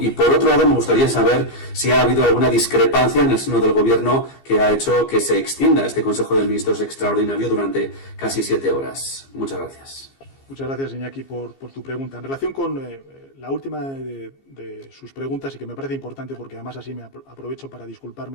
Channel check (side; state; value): right; late; 15 ms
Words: Y por otro lado, me gustaría saber si ha habido alguna discrepancia en el seno del Gobierno que ha hecho que se extienda este Consejo de Ministros extraordinario durante casi 7 horas. Muchas gracias. Muchas gracias, Iñaki, por tu pregunta. En relación con la última de sus preguntas, y que me parece importante porque además así me aprovecho para